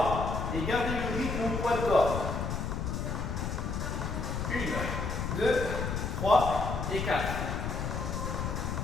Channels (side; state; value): left; noise; rumble, 2 dB below the sound